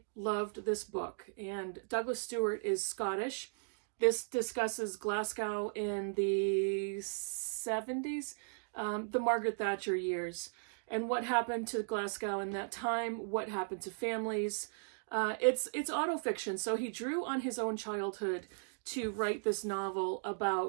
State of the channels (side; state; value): left; silent; digital silence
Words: loved this book, and Douglas Stewart is Scottish. This discusses Glasgow in the 70s, the Margaret Thatcher years, and what happened to Glasgow in that time, what happened to families. It's autofiction, so he drew on his own childhood to write this novel